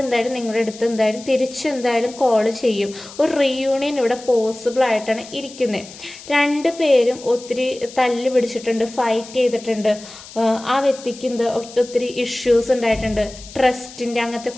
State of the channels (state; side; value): noise; left; hiss, 17 dB below the sound